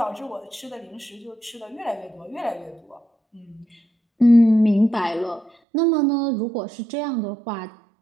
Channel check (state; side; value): drops out; left; at 5.5 s